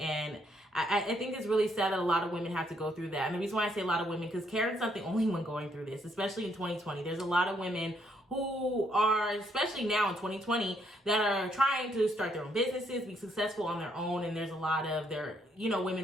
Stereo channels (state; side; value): normal; both; correlation 0.72